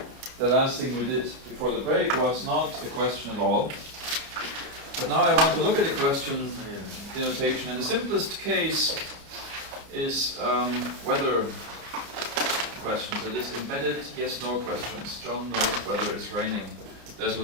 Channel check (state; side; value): late; left; 29 ms